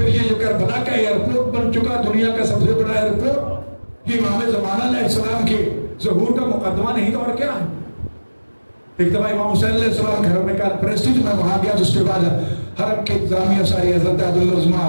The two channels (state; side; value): inverted; both; correlation -1.00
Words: یہ جو کربلا کا ایئرپورٹ بن چکا دنیا کا سب سے بڑا ایئرپورٹ، یہ امام زمانہ علیہ السلام کے ظہور کا مقدمہ نہیں تو اور کیا ہے. ایک دفعہ امام حسین علیہ السلام گھر میں کانفرنس تھی، میں وہاں گیا. اس کے بعد حرم کے انتظامیہ ساری حضرت عبدالعظمہ